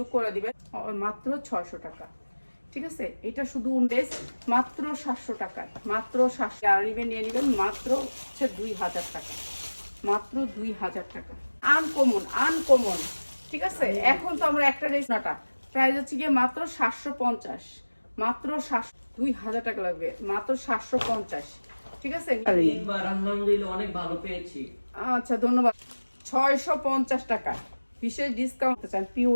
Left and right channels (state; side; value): inverted; both; correlation -1.00